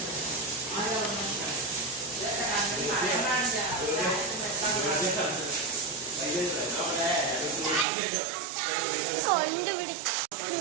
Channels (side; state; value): left; drops out; at 7.9 s